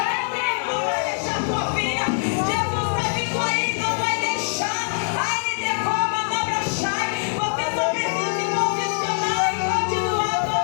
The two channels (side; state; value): right; silent; digital silence